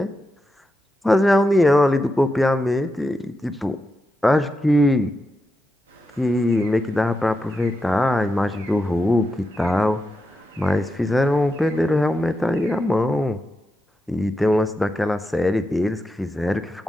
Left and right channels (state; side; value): normal; both; correlation 0.88